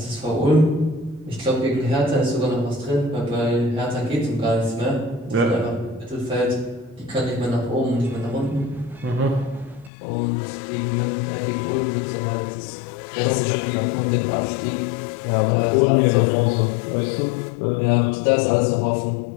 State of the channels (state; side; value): drops out; right; at 9.9 s